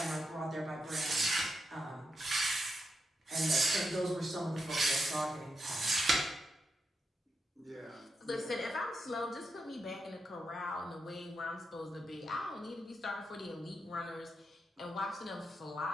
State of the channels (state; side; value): normal; both; correlation 0.84